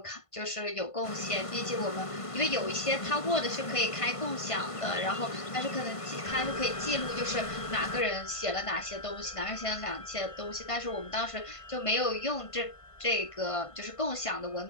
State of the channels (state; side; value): late; right; 1.5 ms